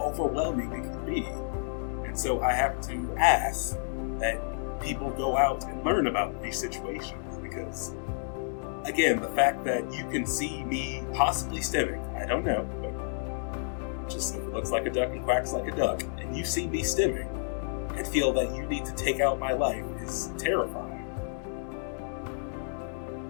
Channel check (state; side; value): silent; right; digital silence